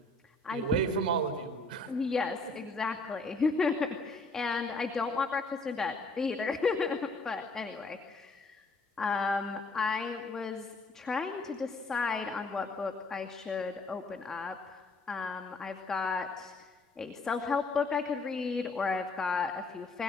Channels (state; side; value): quieter; right; 3.0 dB